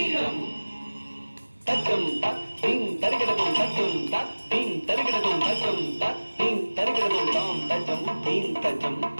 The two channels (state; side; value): inverted; both; correlation -1.00